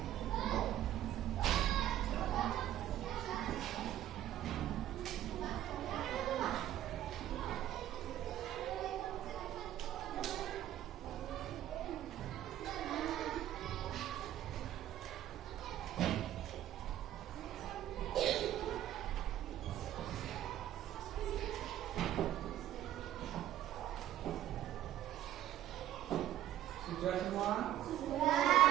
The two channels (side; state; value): left; quieter; 12.4 dB